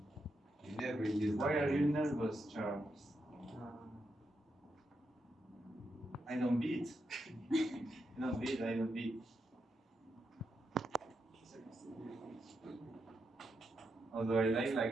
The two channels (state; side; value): normal; both; correlation 0.84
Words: You never use Why that. are you nervous, Charles? I don't beat. I don't beat. I don't beat. Although I like